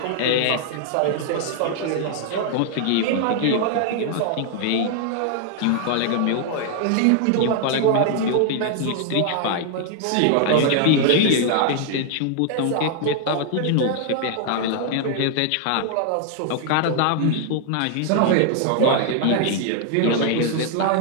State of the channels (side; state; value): both; different; correlation 0.00